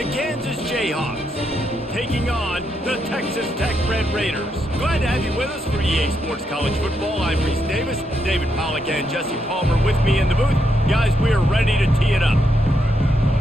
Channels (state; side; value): normal; both; correlation 0.80